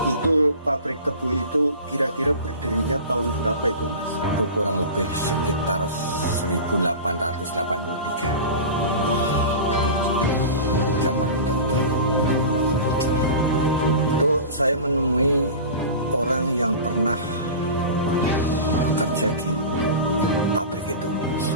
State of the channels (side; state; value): both; inverted; correlation -0.33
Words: pabrik tebu itu kira-kira berdirinya tahun berapa itu Mas? Itu kurang lebih sekitar 1883. Zaman itu. Itu saya menemui orang yang pernah bekerja di pabrik itu.